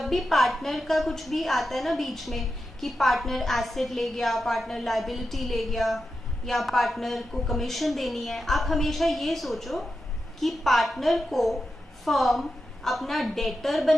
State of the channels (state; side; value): normal; both; correlation 0.90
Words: भी पार्टनर का कुछ भी आता है ना बीच में कि पार्टनर एसेट ले गया, पार्टनर लायबिलिटी ले गया, या पार्टनर को कमीशन देनी है, आप हमेशा ये सोचो कि पार्टनर को फर्म अपना डेटर